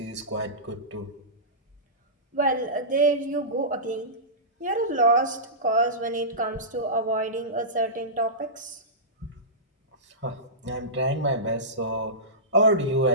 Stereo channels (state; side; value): normal; both; correlation -0.19